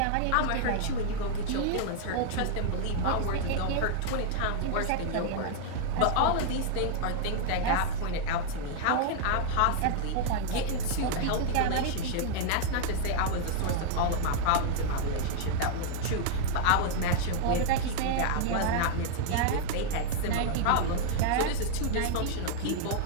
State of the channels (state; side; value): different; both; correlation -0.01